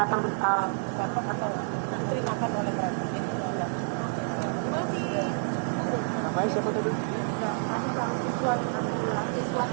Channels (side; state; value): left; silent; 59 dB below the other